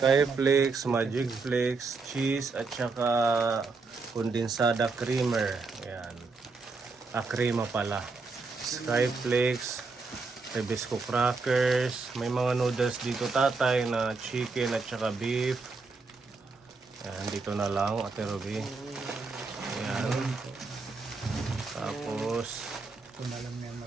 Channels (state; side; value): quieter; left; 4.1 dB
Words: Magic Flakes, cheese, at saka kondensada creamer. Ayan. Crema pala. Skyflakes, Rebisco crackers, may mga noodles dito, tatay, na chicken at saka beef. Ayan, dito na lang, Ate Ruby. Ayan. Tapos, Ito na lang yan